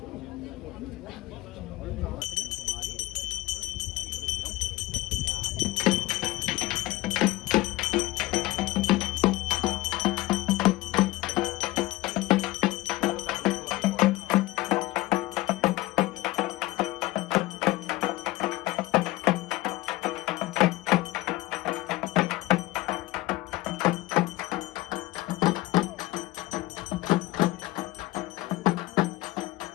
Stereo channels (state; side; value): quieter; right; 18.6 dB